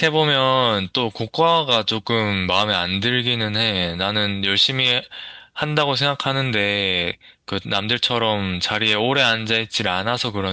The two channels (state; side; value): identical; both; correlation 1.00